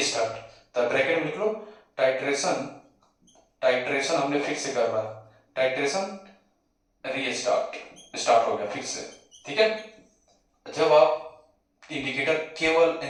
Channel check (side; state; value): both; identical; correlation 1.00